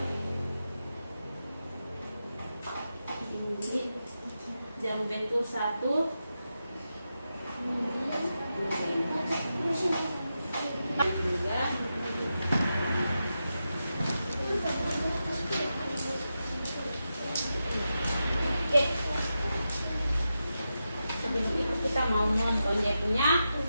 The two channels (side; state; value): both; inverted; correlation -0.89